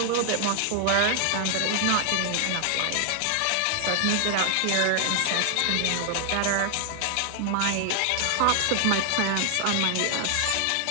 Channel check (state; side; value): different; both; correlation 0.00